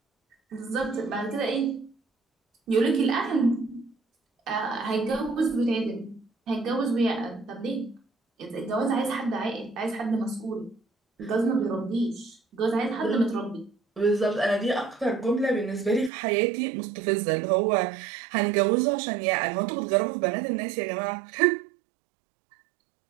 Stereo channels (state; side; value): drops out; left; at 16.1 s